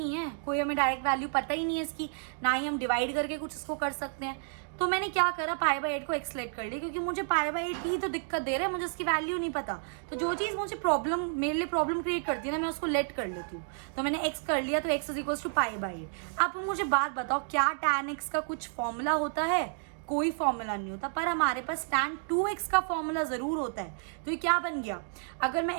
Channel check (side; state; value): left; silent; 57 dB below the other